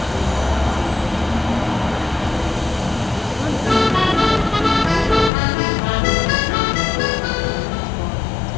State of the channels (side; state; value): right; drops out; at 5.3 s